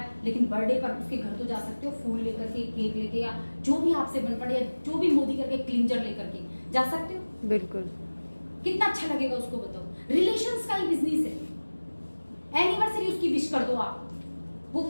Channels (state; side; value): inverted; both; correlation -1.00